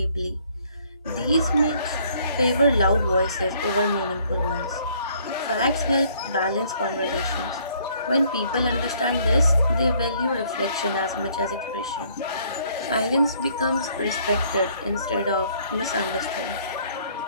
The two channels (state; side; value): inverted; both; correlation -0.63